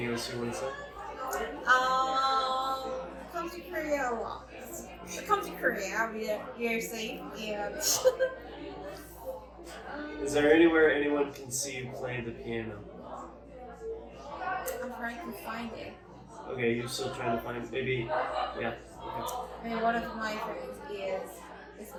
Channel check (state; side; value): identical; both; correlation 1.00